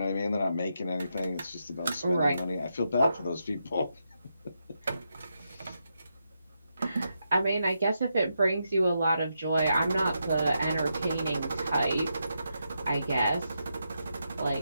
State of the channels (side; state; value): both; inverted; correlation -0.84